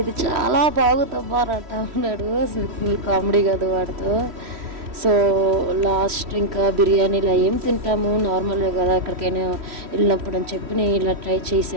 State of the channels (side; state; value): left; late; 3.1 ms